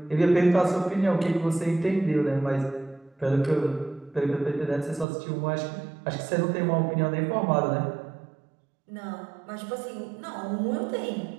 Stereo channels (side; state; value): left; drops out; at 5.1 s